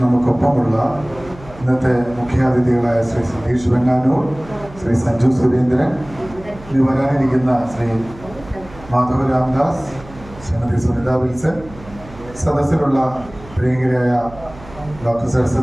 നമുക്കൊപ്പമുള്ള ഇന്നത്തെ മുഖ്യാതിഥികളായ ശ്രീ സതീഷ് വെങ്ങാനൂർ, ശ്രീ സഞ്ജു സുരേന്ദ്രൻ, ഇനി വരാനിരിക്കുന്ന ശ്രീ മാധവ് രാംദാസ്, ശ്രീമതി സുനിത വിൽസൺ, സദസ്സിലുള്ള പ്രിയങ്കരായ doctor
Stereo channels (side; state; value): right; noise; hum, 19 dB below the sound